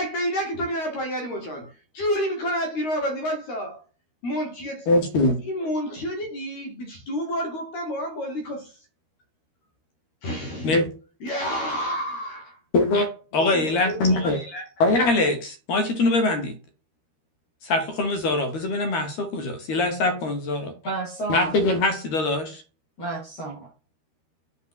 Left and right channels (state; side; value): late; right; 13 ms